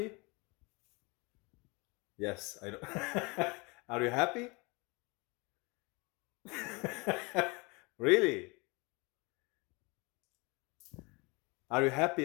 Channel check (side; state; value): right; quieter; 27.6 dB